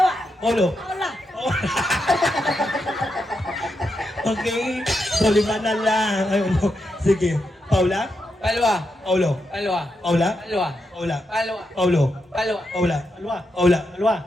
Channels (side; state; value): both; normal; correlation 0.84